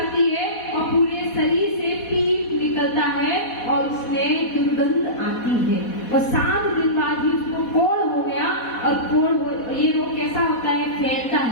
है और पूरे शरीर से पीप निकलता है और उसमें दुर्गंध आती है। और 7 दिन बाद ही उसको कोढ़ हो गया। और ये रोग कैसा होता है? फैलता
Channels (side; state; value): right; late; 4.1 ms